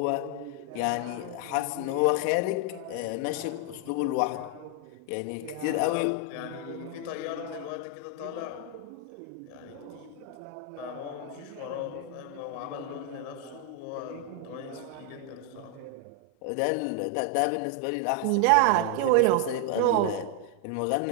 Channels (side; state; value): both; different; correlation 0.00